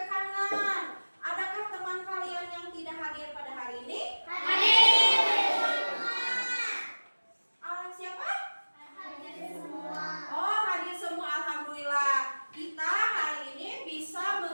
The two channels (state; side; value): inverted; both; correlation -1.00